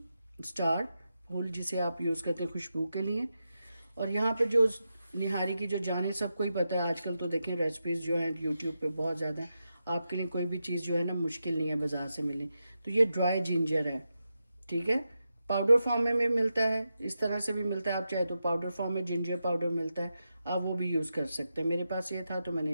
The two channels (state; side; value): inverted; both; correlation -0.88